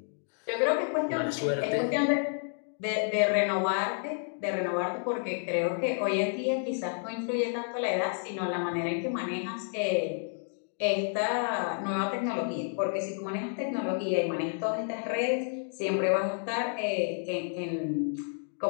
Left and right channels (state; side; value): silent; right; 58 dB below the other